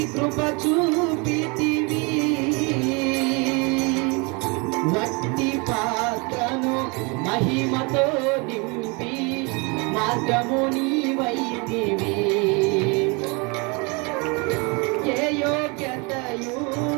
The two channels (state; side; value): quieter; left; 30.1 dB